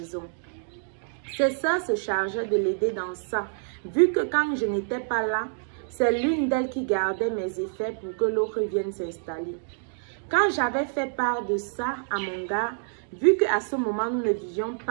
Ces sœurs se chargeaient de l'aider dans ça, vu que quand je n'étais pas là, c'est l'une d'elles qui gardait mes effets pour que l'autre vienne s'installer. Quand j'avais fait part de ça à mon gars, vu qu'à ce moment nous ne vivions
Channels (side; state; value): left; silent; digital silence